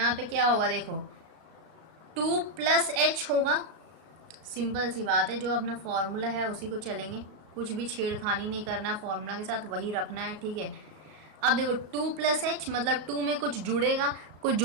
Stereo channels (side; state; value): left; late; 36 ms